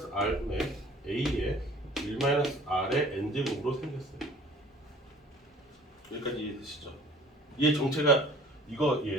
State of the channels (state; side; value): normal; both; correlation 0.50